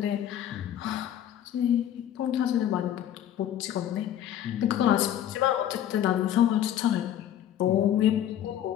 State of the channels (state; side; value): quieter; right; 10.9 dB